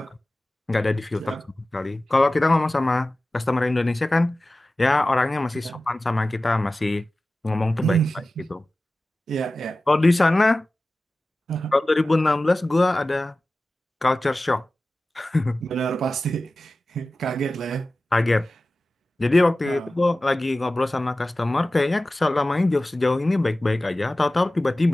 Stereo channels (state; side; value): normal; both; correlation 0.96